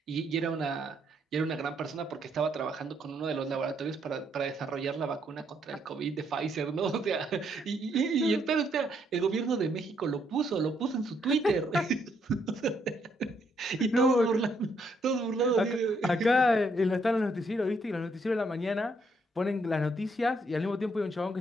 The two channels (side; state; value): both; normal; correlation 0.73